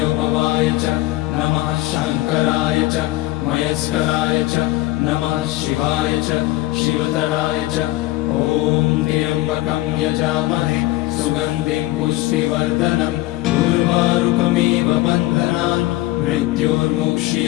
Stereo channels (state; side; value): quieter; right; 18.1 dB